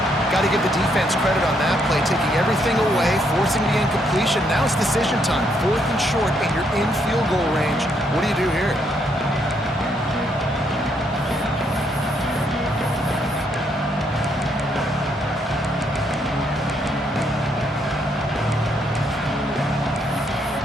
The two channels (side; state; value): both; normal; correlation 0.74